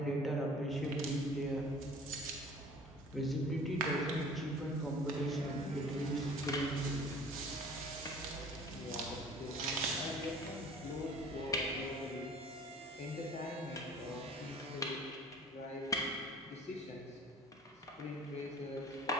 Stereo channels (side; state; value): both; normal; correlation 0.47